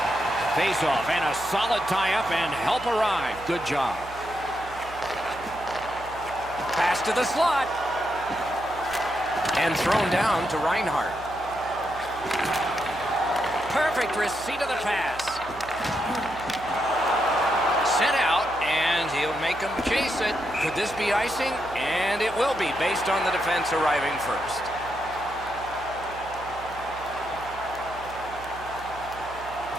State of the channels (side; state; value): right; noise; hum, 17 dB below the sound